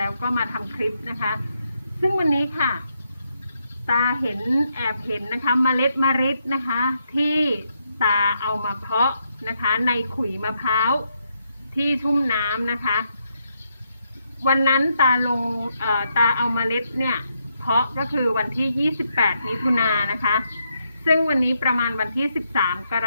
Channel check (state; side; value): inverted; both; correlation -0.79